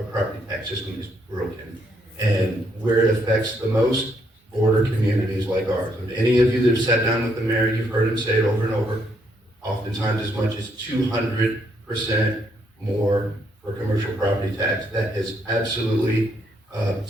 property tax system is broken. And where it affects the most, border communities like ours. And any of you that have sat down with the mayor, you've heard him say it over and over, oftentimes as much as 200% more for commercial property tax. That has absolutely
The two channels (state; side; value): normal; both; correlation 0.73